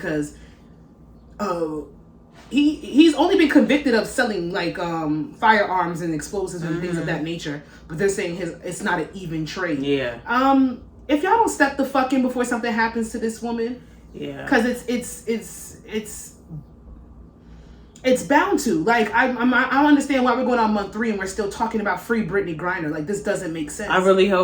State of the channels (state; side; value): identical; both; correlation 1.00